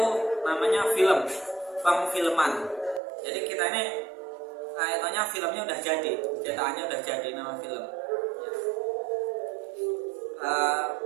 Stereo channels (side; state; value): left; drops out; at 3.0 s